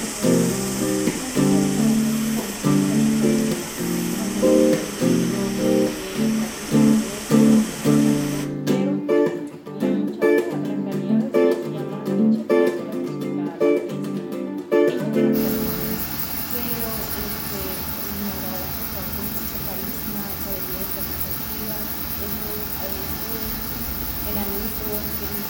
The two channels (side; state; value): both; identical; correlation 1.00